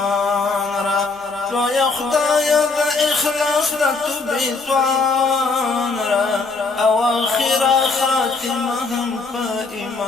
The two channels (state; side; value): quieter; right; 4.0 dB